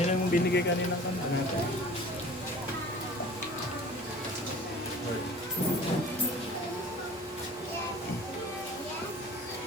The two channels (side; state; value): both; normal; correlation 0.44